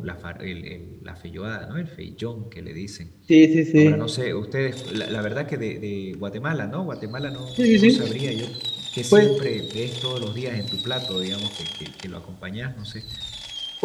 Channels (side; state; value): both; identical; correlation 1.00